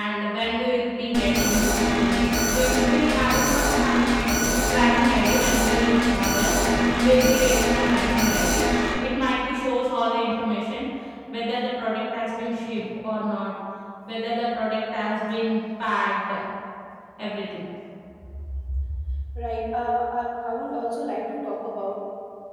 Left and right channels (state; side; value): identical; both; correlation 1.00